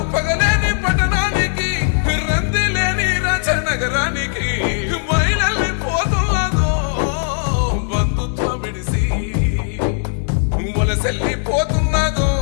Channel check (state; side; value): silent; right; 67 dB below the other